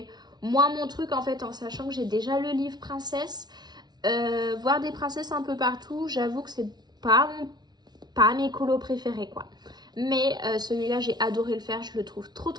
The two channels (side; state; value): left; late; 0.20 ms